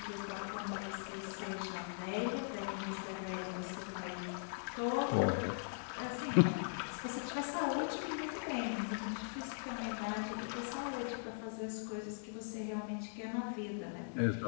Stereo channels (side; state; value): right; silent; digital silence